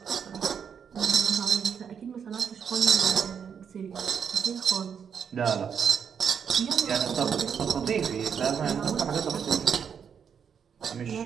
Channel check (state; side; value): quieter; left; 7.3 dB